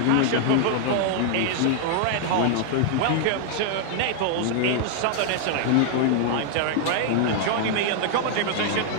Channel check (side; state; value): both; different; correlation 0.00